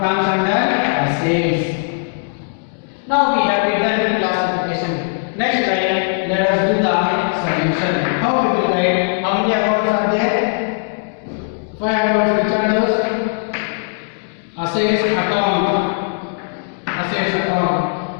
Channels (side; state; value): right; silent; digital silence